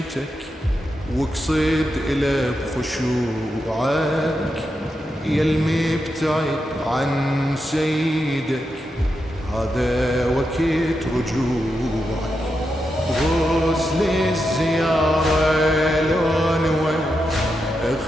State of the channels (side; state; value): both; normal; correlation 0.86